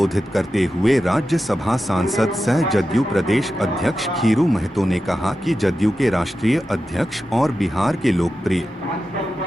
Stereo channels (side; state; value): both; normal; correlation 0.91